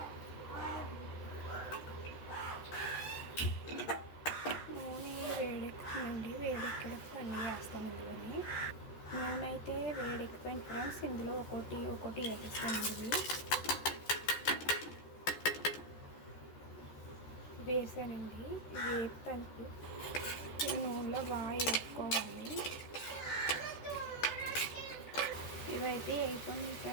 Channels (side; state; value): right; late; 14 ms